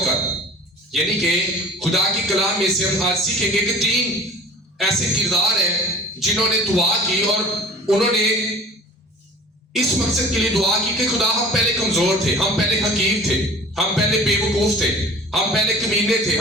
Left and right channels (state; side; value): normal; both; correlation 0.44